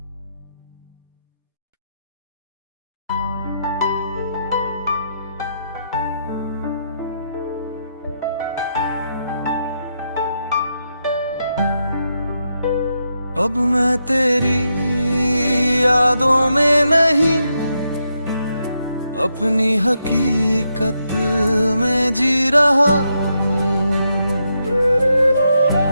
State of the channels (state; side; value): inverted; both; correlation -0.82